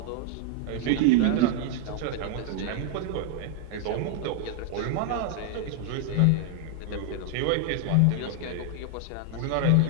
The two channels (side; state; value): both; different; correlation 0.00